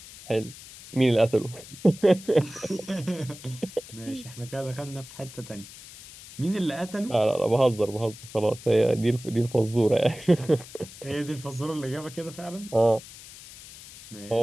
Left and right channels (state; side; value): noise; left; hiss, 17 dB below the sound